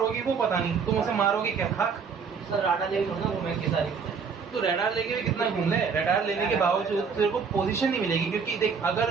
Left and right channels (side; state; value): left; quieter; 5.8 dB